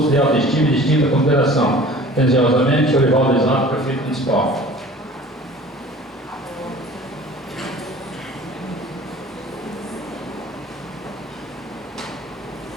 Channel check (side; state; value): both; normal; correlation 0.45